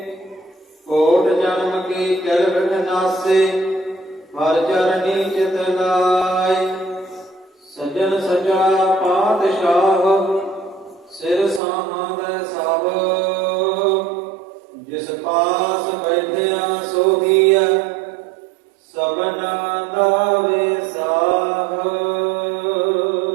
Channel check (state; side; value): drops out; left; at 11.6 s